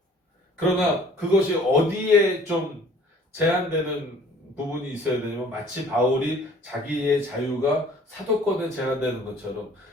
그러나 그것이 어디에 좀 제한되는 부분이 있어야 되냐면 마치 바울이 자기의 자유가 사도권에 제한되는 것처럼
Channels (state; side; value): normal; both; correlation 0.53